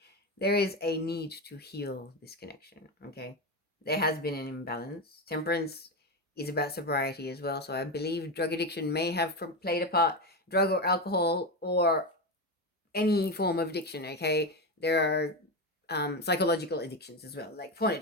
there is a need to heal this connection. Okay. There has been an imbalance. Temperance is about sobriety as well. So I believe drug addiction may have played a part. Drug or alcohol or any form of addiction. Okay. There are psychological addictions as well, like porn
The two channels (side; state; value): both; normal; correlation 0.15